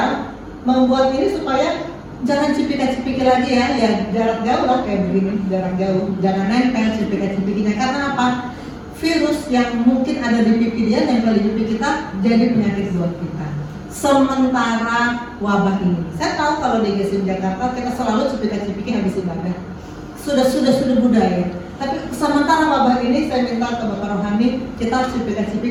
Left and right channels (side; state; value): both; identical; correlation 1.00